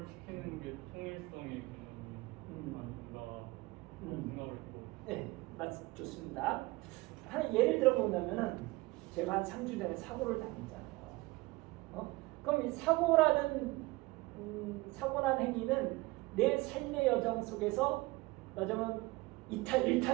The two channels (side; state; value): left; quieter; 21.9 dB